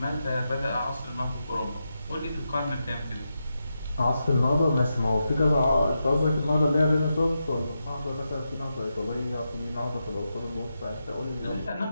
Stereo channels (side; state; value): both; inverted; correlation -0.87